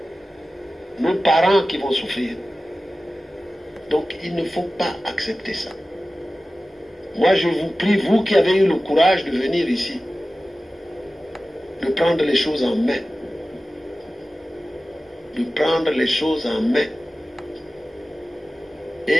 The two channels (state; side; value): normal; both; correlation 0.95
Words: Nos parents qui vont souffrir. Donc il ne faut pas accepter ça. Moi je vous prie, vous qui avez eu le courage de venir ici, de prendre les choses en main. De prendre les choses en main.